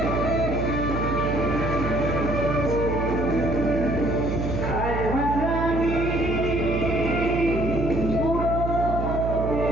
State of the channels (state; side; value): noise; right; hum, 3 dB below the sound